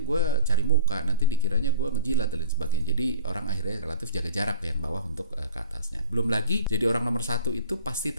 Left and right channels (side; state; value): both; inverted; correlation -0.41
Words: gue cari muka, nanti dikiranya gue ngejilat dan lain sebagainya. Jadi orang akhirnya relatif jaga jarak yang bawah untuk ke atasnya. Belum lagi jadi orang nomor satu itu pasti